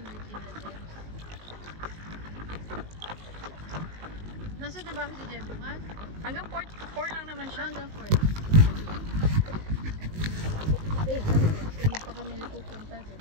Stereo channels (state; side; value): late; left; 19 ms